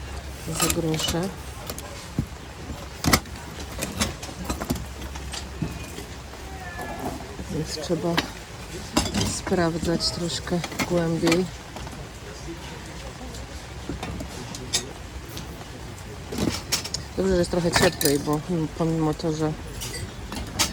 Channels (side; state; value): both; identical; correlation 1.00